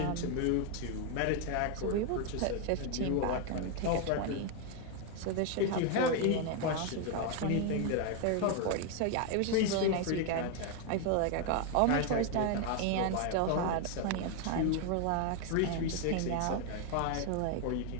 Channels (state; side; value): different; both; correlation 0.01